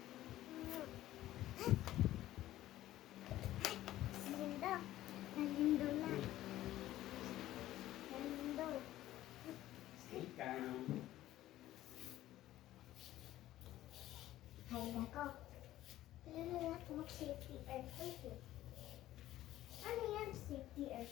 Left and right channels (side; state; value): right; quieter; 14.4 dB